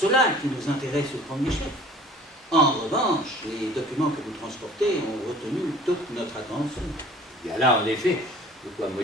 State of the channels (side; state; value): both; normal; correlation 0.48